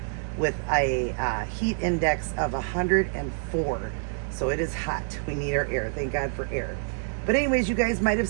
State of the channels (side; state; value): left; silent; 60 dB below the other